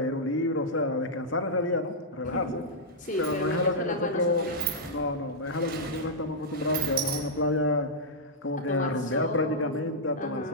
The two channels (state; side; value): normal; both; correlation -0.08